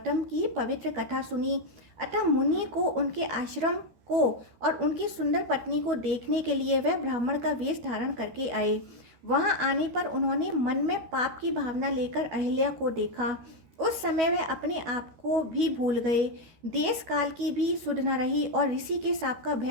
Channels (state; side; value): late; left; 12 ms